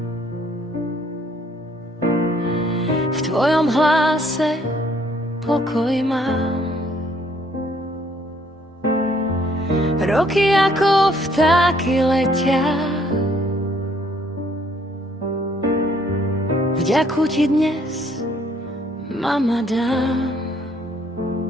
v tvojom hlase pokoj mám. Roky ako vtáky letia, vďaku ti dnes, mama, dám.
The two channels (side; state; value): both; normal; correlation 0.65